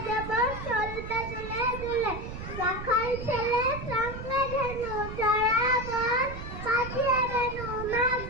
দেব চলবে দুলে দুলে। রাখাল ছেলে সঙ্গে ধেনু জড়াবন, পাঠিয়ে দেনু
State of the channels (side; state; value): right; noise; rumble, 9 dB below the sound